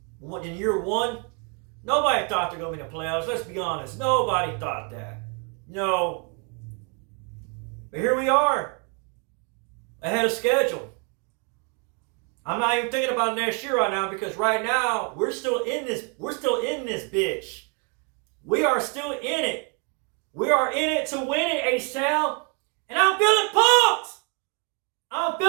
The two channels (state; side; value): quieter; left; 37.1 dB